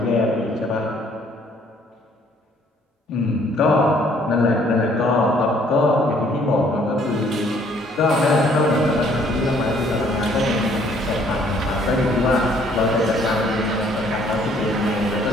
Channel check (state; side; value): normal; both; correlation 0.62